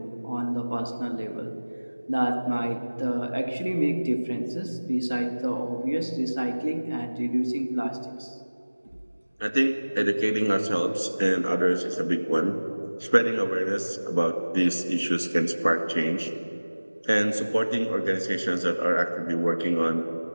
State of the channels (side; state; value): both; inverted; correlation -1.00